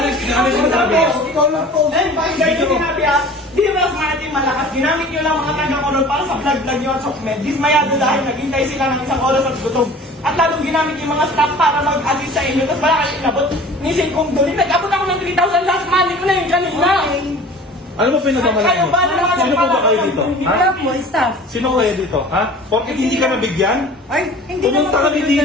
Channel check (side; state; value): both; normal; correlation 0.43